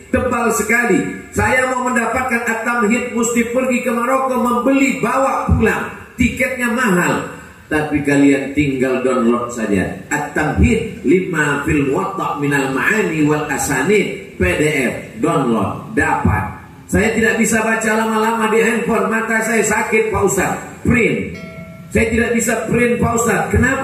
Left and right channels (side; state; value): both; identical; correlation 1.00